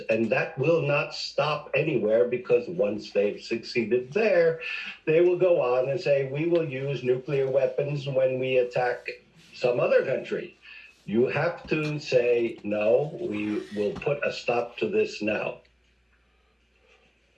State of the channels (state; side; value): identical; both; correlation 1.00